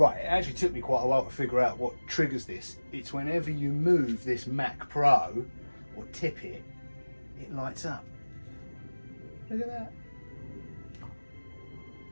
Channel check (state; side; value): inverted; both; correlation -1.00